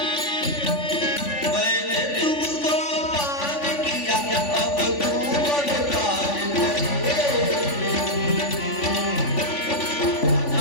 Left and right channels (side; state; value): right; late; 3.5 ms